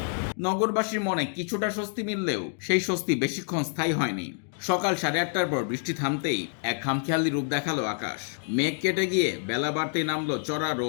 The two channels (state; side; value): silent; right; 60 dB below the other